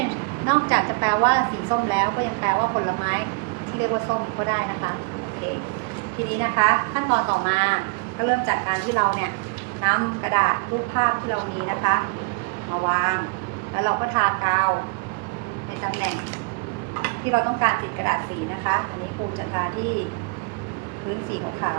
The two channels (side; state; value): left; quieter; 29.8 dB